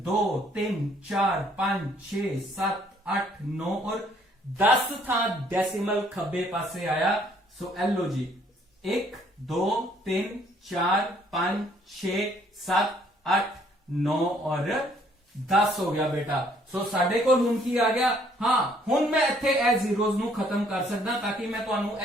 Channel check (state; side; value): normal; both; correlation 0.63